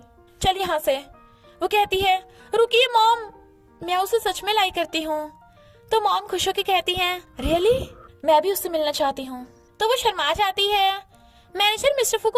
चल यहाँ से। वो कहती है रुकिए मॉम, मैं उसे सच में लाइक करती हूँ। तो मॉम खुश होकर कहती है रियली, मैं भी उससे मिलना चाहती हूँ। तो वो शर्मा जाती है। मैनेजर मिस्टर फू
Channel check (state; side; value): identical; both; correlation 1.00